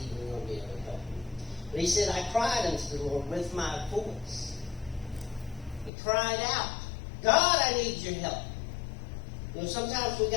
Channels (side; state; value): right; drops out; at 5.9 s